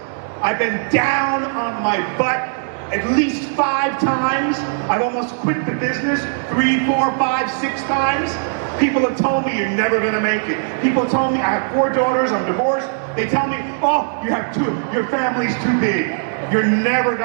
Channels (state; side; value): silent; left; digital silence